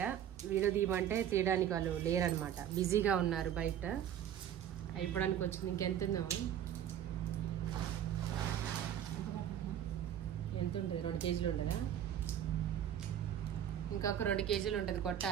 వీడియో తీయమంటే తీయడానికి వాళ్ళు లేరనమాట, బిజీగా ఉన్నారు బయట. అయిపోవడానికి వచ్చింది. ఇంకెంతుందో ఎంత ఉంటుంది? 2 కేజీలు ఉంటుందా? ఇంకొక 2 కేజీలు ఉంటుంది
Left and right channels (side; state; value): left; quieter; 10.2 dB